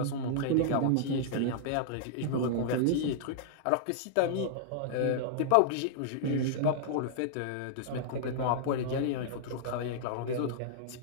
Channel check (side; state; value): both; different; correlation -0.01